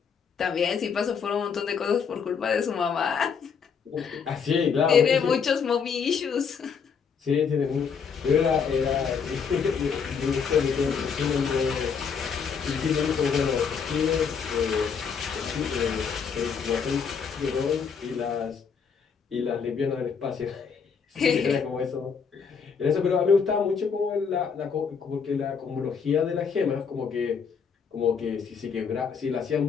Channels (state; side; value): quieter; right; 6.2 dB